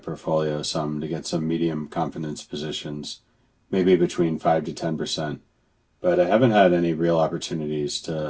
some to get some medium confidence positions, maybe between 5 to 10%, but I haven't had any real opportunities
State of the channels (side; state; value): both; identical; correlation 1.00